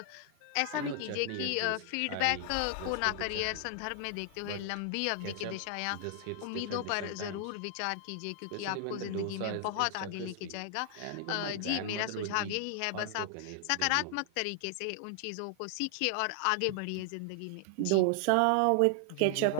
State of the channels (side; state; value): both; different; correlation 0.00